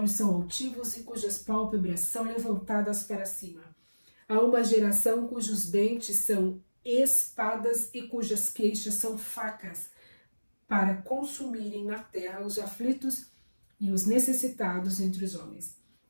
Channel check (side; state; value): both; inverted; correlation -1.00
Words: são altivos e cujas pálpebras são levantadas para cima. Há uma geração cujos dentes são espadas e cujas queixas são facas, para consumirem na terra os aflitos e os necessitados entre os homens.